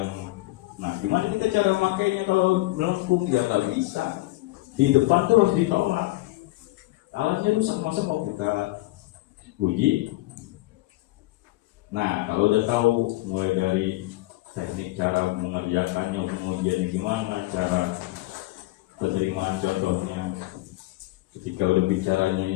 nah gimana kita cara makainya kalau melengkung? Ya nggak bisa, di depan tuh harus ditolak. Alatnya rusak, masa mau kita uji? Nah, kalau udah tahu mulai dari teknik cara mengerjakannya, pengujiannya gimana, cara penerimaan contohnya, ketika udah bicaranya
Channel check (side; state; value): right; quieter; 19.4 dB